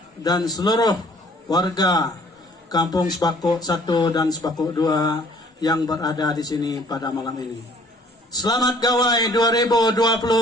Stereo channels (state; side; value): normal; both; correlation 0.56